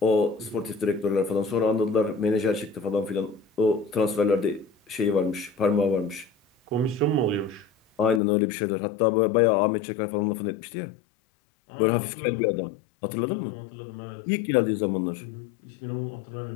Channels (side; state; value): right; drops out; at 8.2 s